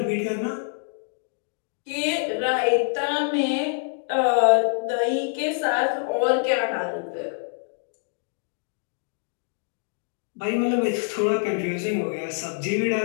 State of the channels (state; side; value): silent; right; digital silence